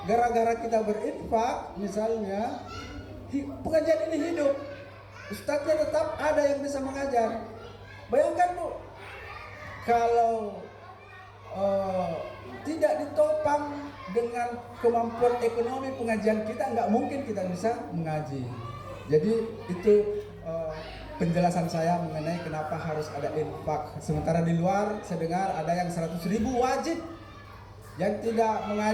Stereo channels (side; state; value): both; identical; correlation 1.00